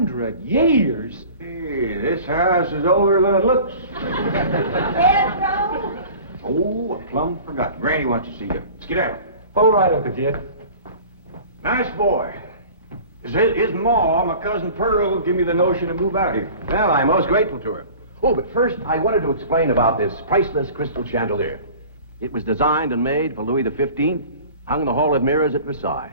years? Hey, this house is older than it looks. Pedro? Oh, I plumb forgot. Granny wants to see you. Skedaddle. All right, Uncle Jed. Nice boy. His ma, my cousin Pearl, give me the notion to move out here. Well, I'm most grateful to her. Oh, but first, I wanted to explain about this priceless crystal chandelier. It was designed and made for Louis XV, hung in the Hall of Mirrors at Versailles.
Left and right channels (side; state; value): both; inverted; correlation -0.42